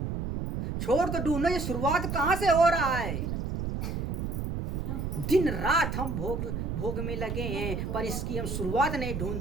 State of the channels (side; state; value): right; noise; rumble, 3 dB below the sound